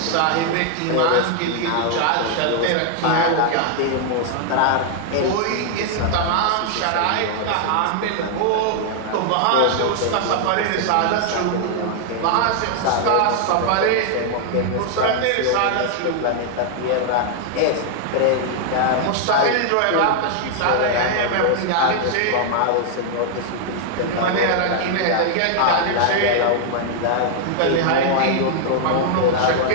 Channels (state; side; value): different; both; correlation 0.00